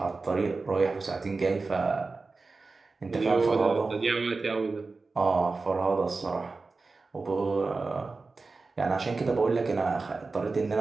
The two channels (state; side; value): quieter; left; 3.9 dB